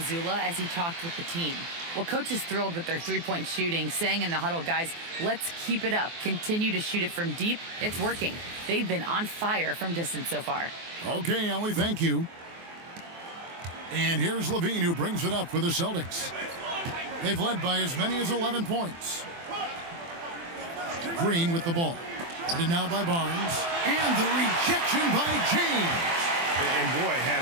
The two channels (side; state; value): left; late; 24 ms